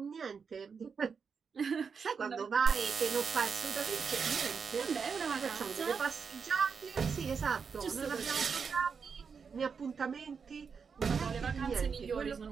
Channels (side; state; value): left; quieter; 5.9 dB